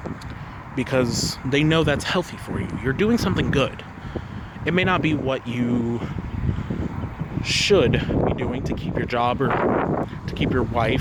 Because they know that's healthy for you. You're doing something good. It may not be what you should be doing to keep your job or to keep your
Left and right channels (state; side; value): identical; both; correlation 1.00